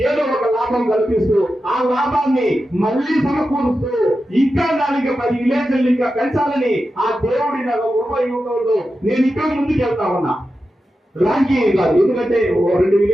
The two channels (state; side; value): normal; both; correlation 0.91